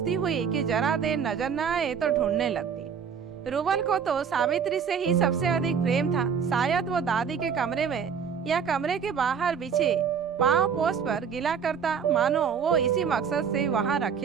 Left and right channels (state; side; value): quieter; left; 6.9 dB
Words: हुई कि जरा देर नजर न आए तो ढूंढने लगती। रूबल को तो सावित्री से ही सबसे अधिक प्रेम था। शायद वो दादी के कमरे में या कमरे के बाहर बिछे पांव पोस्ट पर गिला करता, मानो वो इसी मकसद से वहां